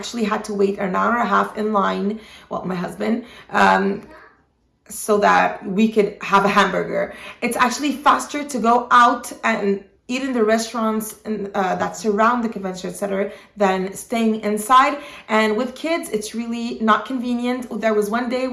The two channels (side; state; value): both; identical; correlation 1.00